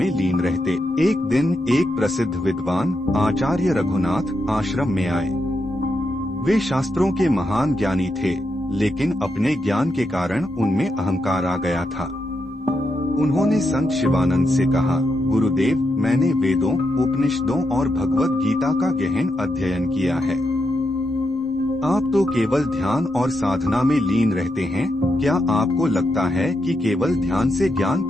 लीन रहते। एक दिन एक प्रसिद्ध विद्वान आचार्य रघुनाथ आश्रम में आए। वे शास्त्रों के महान ज्ञानी थे, लेकिन अपने ज्ञान के कारण उनमें अहंकार आ गया था। उन्होंने संत शिवानंद से कहा, गुरुदेव, मैंने वेदों, उपनिषदों और भगवत गीता का गहन अध्ययन किया है। आप तो केवल ध्यान और साधना में लीन रहते हैं। क्या आपको लगता है कि केवल ध्यान से ज्ञान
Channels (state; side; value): normal; both; correlation 0.84